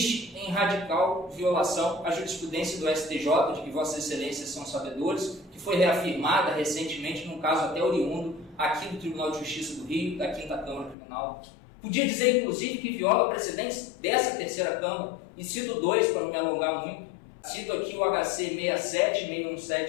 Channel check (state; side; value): drops out; right; at 11.0 s